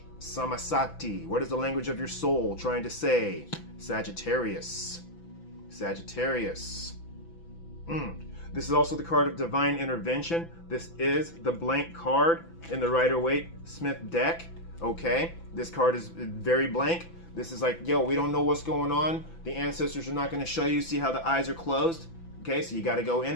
Samasati. What is the language of your soul trying to say? Sagittarius. This is also the card of divine intervention. This is the blank card in the Rider-Waite-Smith deck. Okay, this card is very blank. This is like, yo, we don't know what's going on. The ancestors are not going to show you. See how the eyes are closed? Okay, so you got to go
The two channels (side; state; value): right; late; 6.0 ms